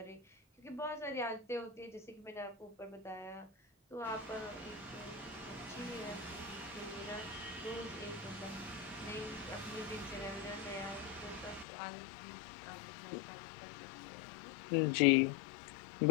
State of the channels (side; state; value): right; drops out; at 11.7 s